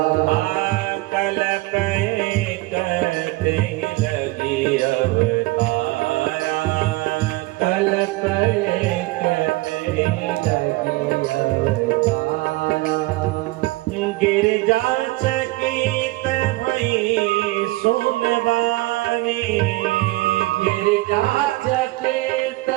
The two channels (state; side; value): quieter; left; 20.5 dB